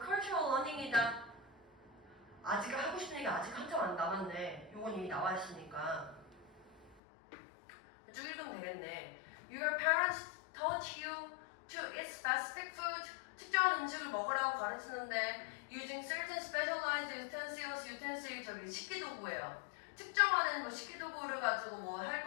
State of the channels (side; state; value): right; drops out; at 7.0 s